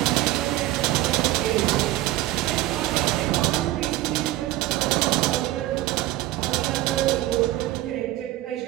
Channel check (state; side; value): quieter; left; 15.9 dB